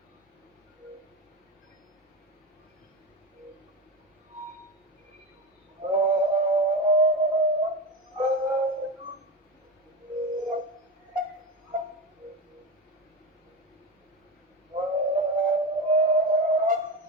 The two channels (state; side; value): normal; both; correlation 0.19